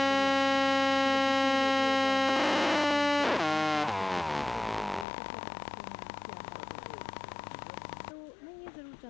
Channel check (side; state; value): right; drops out; at 5.1 s